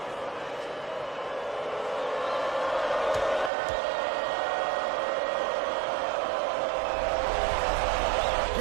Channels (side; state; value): left; drops out; at 3.5 s